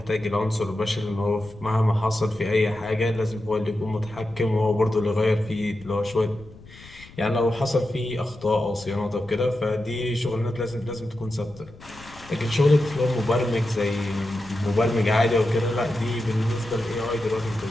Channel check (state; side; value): noise; left; rumble, 20 dB below the sound